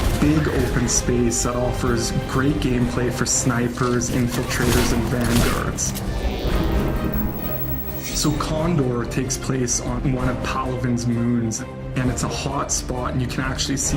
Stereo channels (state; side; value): identical; both; correlation 1.00